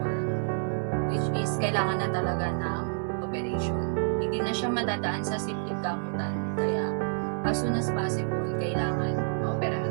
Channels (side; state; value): left; silent; 59 dB below the other